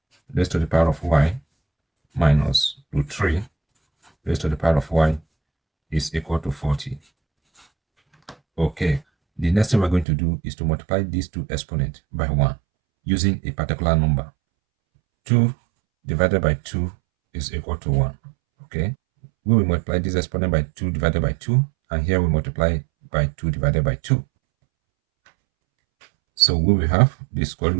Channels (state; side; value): drops out; left; at 10.1 s